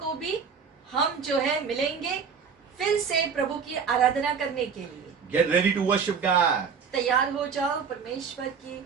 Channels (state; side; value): quieter; left; 6.2 dB